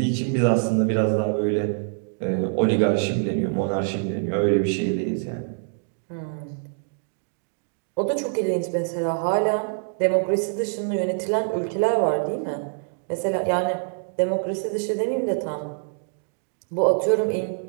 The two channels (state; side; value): silent; left; digital silence